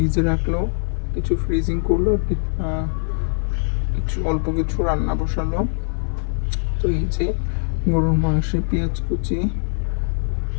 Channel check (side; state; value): right; silent; 64 dB below the other